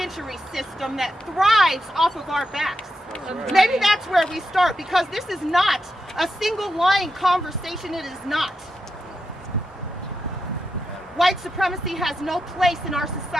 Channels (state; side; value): normal; both; correlation 0.86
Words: system that thrives off of our backs. Right. Maybe that's where we start, because this is not a single line conversation. It is not. White supremacy has no place in our